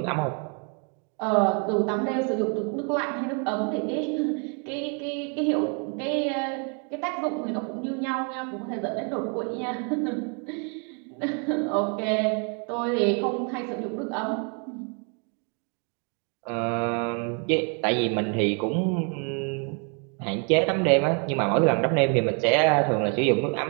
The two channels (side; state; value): left; quieter; 38.0 dB